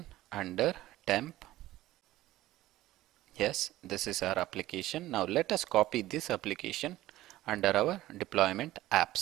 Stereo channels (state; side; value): quieter; left; 15.8 dB